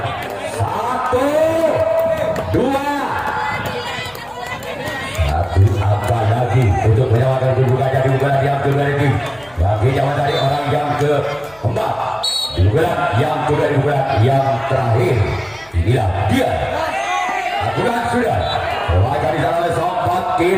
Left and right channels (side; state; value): left; noise; hum, 28 dB below the sound